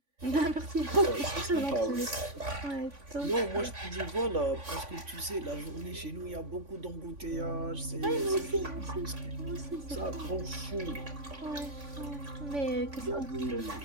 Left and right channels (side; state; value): left; late; 3.5 ms